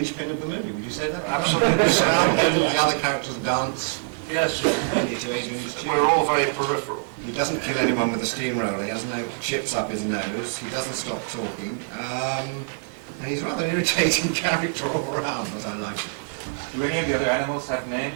of the movie. Would you say that? Absolutely. Around him, the other characters dance. Yes, Mainly to Adrian's tune. we're all very peripheral. He doesn't kill anyone with a steamroller. He has no chips up his nose. He doesn't stop talking. And he's a rather irritating character all around, but I like it. Do any of the other animals have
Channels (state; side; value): silent; left; digital silence